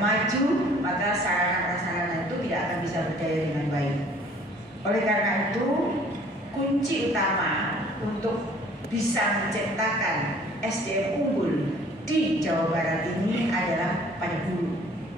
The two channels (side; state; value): both; normal; correlation 0.54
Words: maka sarana-prasarana itu tidak akan bisa berdaya dengan baik. Oleh karena itu, kunci utama untuk bisa menciptakan SDM unggul di Jawa Barat ini adalah pada guru.